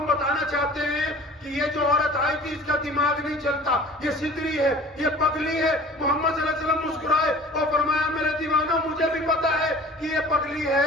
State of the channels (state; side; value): normal; both; correlation 0.46